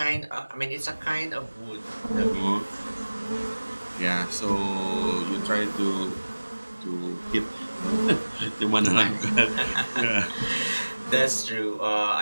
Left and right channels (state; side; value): inverted; both; correlation -1.00